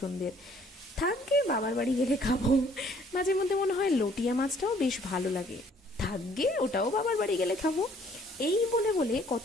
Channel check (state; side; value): normal; both; correlation 0.60